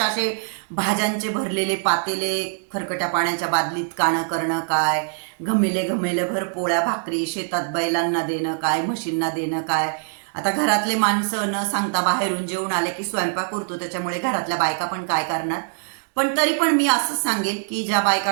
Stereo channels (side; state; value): left; silent; digital silence